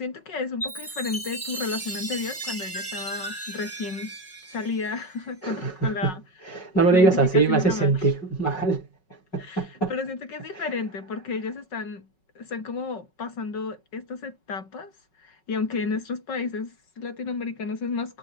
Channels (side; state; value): right; late; 5.4 ms